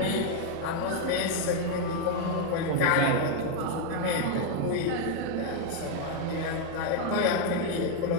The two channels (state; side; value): different; both; correlation 0.01